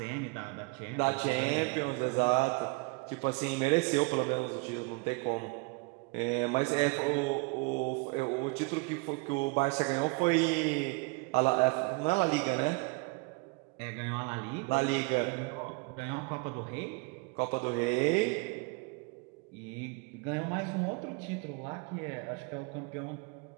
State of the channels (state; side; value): quieter; left; 29.3 dB